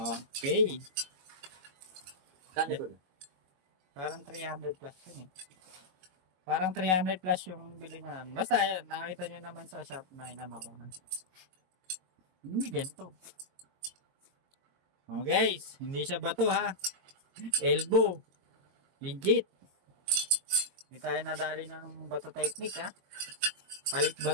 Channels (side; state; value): left; late; 22 ms